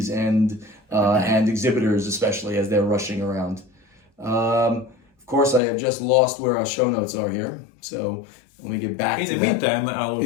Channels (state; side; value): drops out; right; at 5.6 s